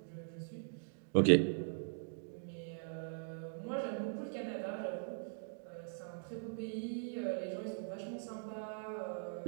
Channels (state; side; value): silent; left; digital silence